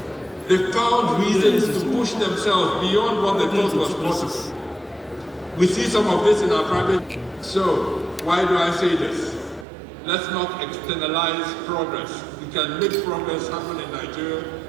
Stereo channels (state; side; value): drops out; left; at 9.7 s